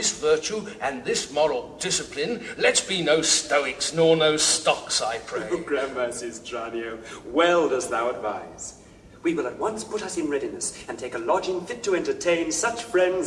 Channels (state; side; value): identical; both; correlation 1.00